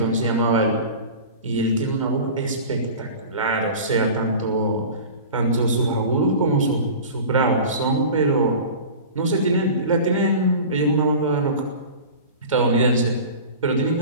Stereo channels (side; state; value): both; inverted; correlation -0.36